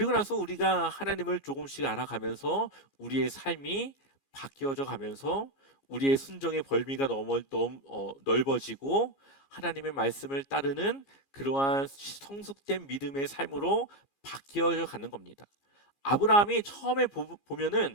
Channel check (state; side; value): late; right; 15 ms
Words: 나서 우리가 하나님을 조금씩 알아가면서 우리의 삶이 바뀌어져 가면서 우리의 순종의 범위가 넓어지고 하나님의 말씀을 따르는 그러한 성숙된 믿음의 삶으로 바뀌어져 가는 겁니다. 아브라함이 처음에